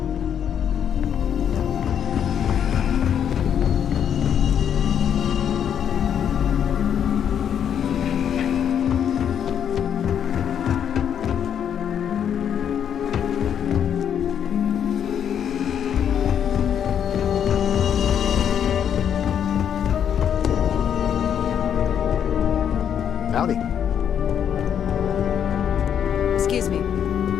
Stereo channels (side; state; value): right; quieter; 8.7 dB